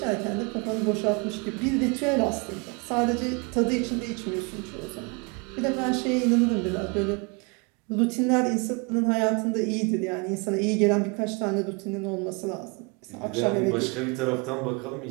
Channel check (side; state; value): left; quieter; 31.0 dB